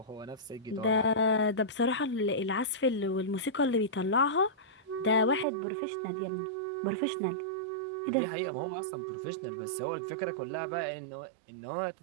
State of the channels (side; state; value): left; drops out; at 5.5 s